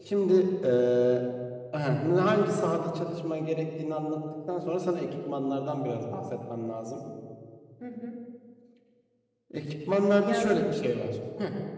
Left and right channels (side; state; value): both; identical; correlation 1.00